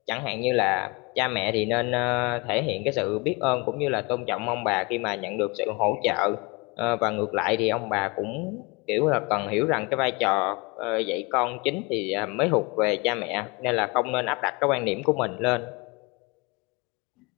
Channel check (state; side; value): quieter; right; 27.9 dB